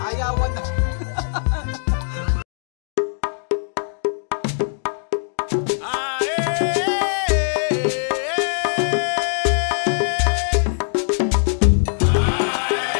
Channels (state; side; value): silent; right; digital silence